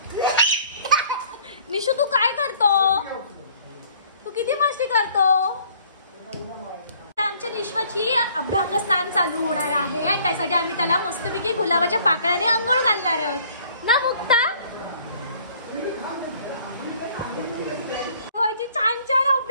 निशू, तू काय करतो, तू किती मस्ती करतो। आमच्या निश्वाची अभ्यंग स्नान चालू होणार आहे आणि त्यासाठी आम्ही त्याला मस्तपैकी गुलाबाच्या पाकळ्याने अंघोळ घालणार आहोत ना मुक्ता। छान छान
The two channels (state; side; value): inverted; both; correlation -0.57